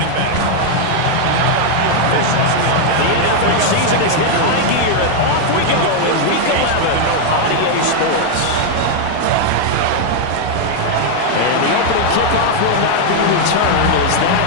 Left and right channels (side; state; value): both; different; correlation 0.00